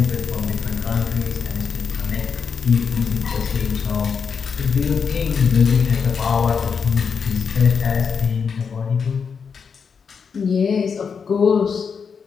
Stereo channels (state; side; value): quieter; right; 6.1 dB